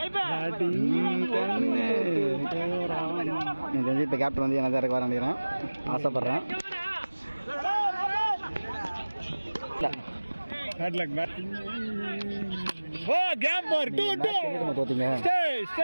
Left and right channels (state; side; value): inverted; both; correlation -1.00